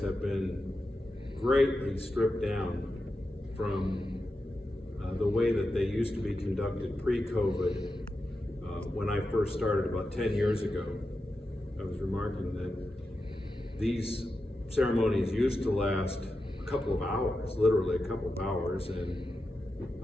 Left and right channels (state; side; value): normal; both; correlation 0.90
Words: have been greatly stripped down from the way that they used to be conducted pre-COVID. When I first started about 10 years ago, I was remarking that these ceremonies used to last a couple of hours, literally a couple of hours, and